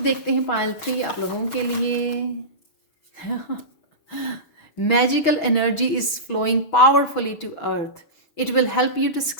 देखते हैं पायल 3 आप लोगों के लिए। Magical energy is flowing powerfully to earth. It will help you to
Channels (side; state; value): right; late; 6.2 ms